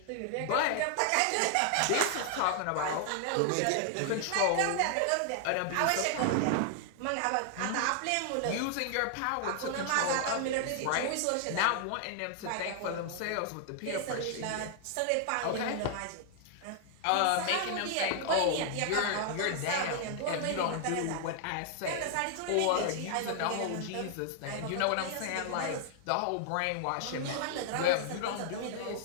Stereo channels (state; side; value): different; both; correlation -0.01